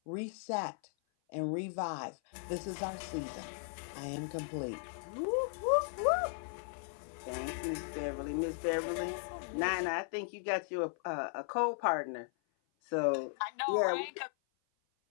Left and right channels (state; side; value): silent; right; 53 dB below the other